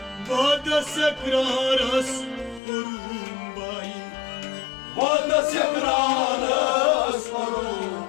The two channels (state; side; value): drops out; right; at 2.6 s